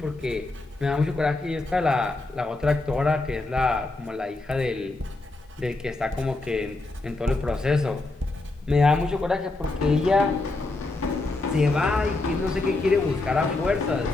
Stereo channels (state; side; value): quieter; right; 3.1 dB